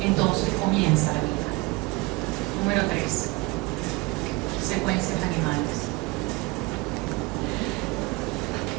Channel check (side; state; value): left; quieter; 24.1 dB